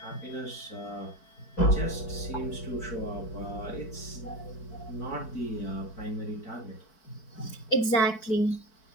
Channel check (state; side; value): late; right; 4.6 ms